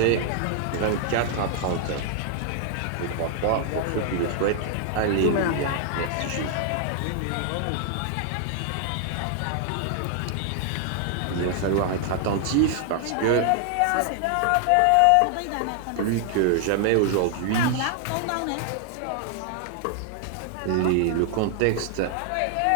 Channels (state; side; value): different; both; correlation 0.00